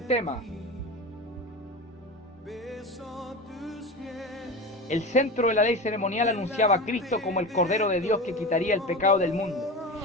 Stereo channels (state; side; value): normal; both; correlation 0.28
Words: tema. El centro de la ley ceremonial anunciaba a Cristo como el Cordero de Dios que quitaría el pecado del mundo.